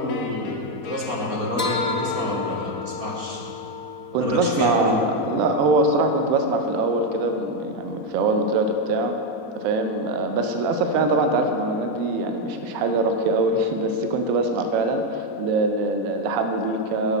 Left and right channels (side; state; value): left; late; 4.1 ms